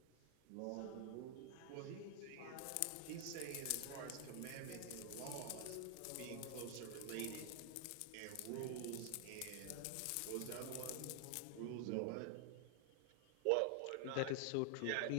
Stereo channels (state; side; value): different; both; correlation 0.00